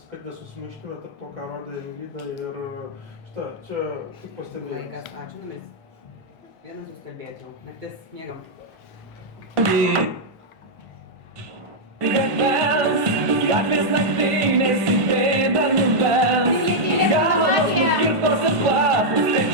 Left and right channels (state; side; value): normal; both; correlation -0.04